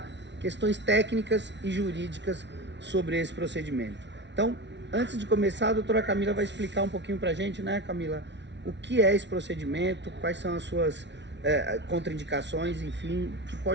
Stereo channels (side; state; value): left; late; 0.51 ms